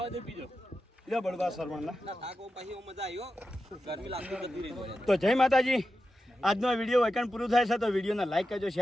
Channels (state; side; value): normal; both; correlation 0.90